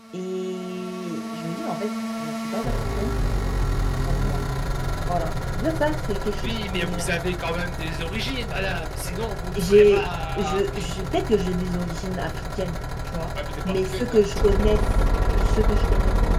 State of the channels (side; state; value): both; identical; correlation 1.00